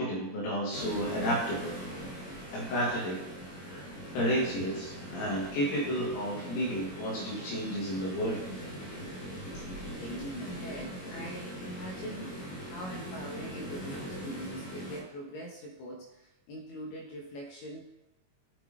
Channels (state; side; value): late; right; 22 ms